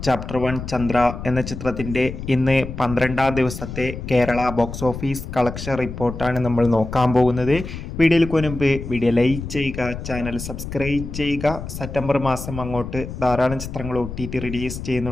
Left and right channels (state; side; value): noise; left; rumble, 8 dB below the sound